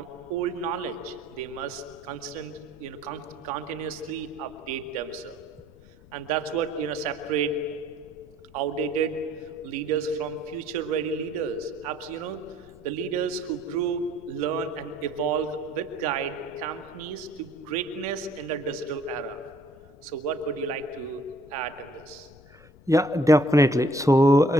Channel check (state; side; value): noise; left; rumble, 23 dB below the sound